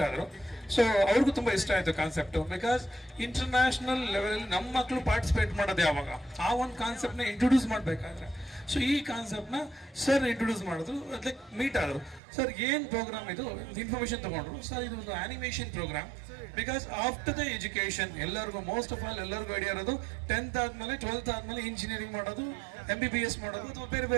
ಆದರು. ಸೊ ಅವ್ರಿಗೂ ತುಂಬ ಇಷ್ಟ ಆಯಿತು ಕಾನ್ಸೆಪ್ಟು. ಬಿಕಾಸ್ ಇಂಟರ್ನ್ಯಾಷನಲ್ ಲೆವೆಲಲ್ಲಿ ನಮ್ಮ ಮಕ್ಕಳು ಪಾರ್ಟಿಸಿಪೇಟ್ ಮಾಡೋದು ಯಾವಾಗ, ಆ ಒಂದು ಕಾನ್ಸೆಪ್ಟ್ನ ಇಂಟ್ರೊಡ್ಯೂಸ್ ಮಾಡಬೇಕಾದ್ರೆ. ಸೊ ಈ ಕಾನ್ಸೆಪ್ಟ್ನ ಸರ್ ಇಂಟ್ರೊಡ್ಯೂಸ್ ಮಾಡಿದ್ರು, ಲೈಕ್ ಮೀಟ್ ಆದರು. ಸರ್ ಏನು ಪ್ರೋಗ್ರಾಮ್ ಇದು, ಇನ್ಫಾರ್ಮೇಷನ್ ತೊಗೊಂಡ್ರು. ಸರ್ ಇದು ಒಂದು animation programme. Because after the education ಎಲ್ಲರಿಗೂ ಮೋಸ್ಟ್ ಆಫ್ ಆಲ್ ಎಲ್ಲರಿಗೂ ಐಡಿಯಾ ಇರೋದು 10th ಆದಮೇಲೆ 12th ಆದಮೇಲೆ ಇಂಜಿನಿಯರಿಂಗ್ ಮಾಡೋದು, MBBS ಮಾಡೋದು, ಅಥವಾ ಬೇರೆ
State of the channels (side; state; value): left; drops out; at 12.2 s